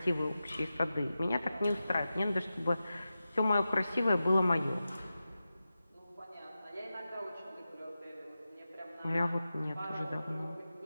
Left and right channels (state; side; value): inverted; both; correlation -0.93